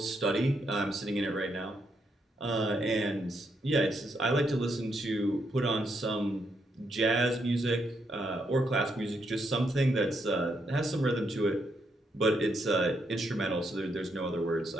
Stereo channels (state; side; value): normal; both; correlation 0.78